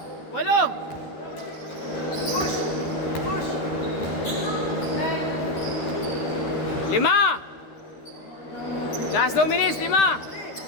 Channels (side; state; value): right; late; 13 ms